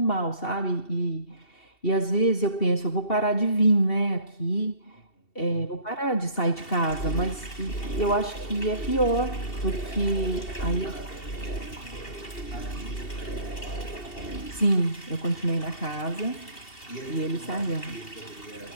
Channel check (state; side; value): late; right; 2.7 ms